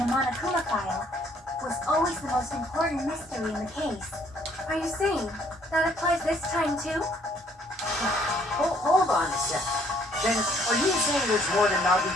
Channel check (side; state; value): both; normal; correlation 0.63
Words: Monokuma file was always the most important mystery in the case. Are you saying that applies this time too? Hold on a sec. Then, are you saying there's more to